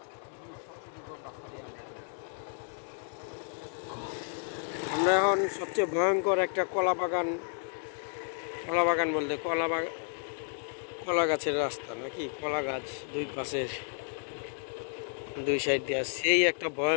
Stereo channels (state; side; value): silent; right; 56 dB below the other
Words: আমরা এখন সবচেয়ে ভয়ঙ্কর একটা কলা বাগান বলতে কলা গাছের রাস্তা নাকি, কলা গাছ দুই পাশের দুই সাইড দিয়ে, সেই একটা